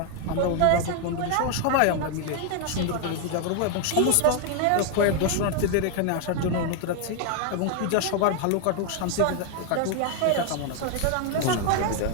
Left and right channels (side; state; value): both; different; correlation 0.00